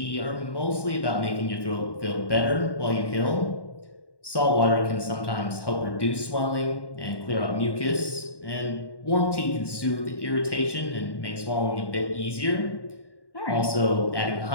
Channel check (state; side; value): late; right; 1.1 ms